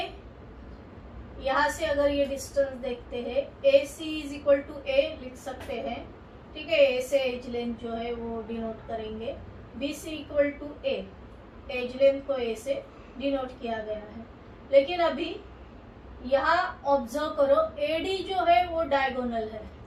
यहाँ से अगर ये डिस्टेंस देखते हैं AC is equal to A लिख सकते हैं, ठीक है, A से एज लेंथ जो है वो डिनोट करेंगे, BC equal to A, edge length को A से डिनोट किया गया है। लेकिन अभी यहाँ ऑब्जर्व करो AD जो है वो डायगोनल है,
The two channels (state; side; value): identical; both; correlation 1.00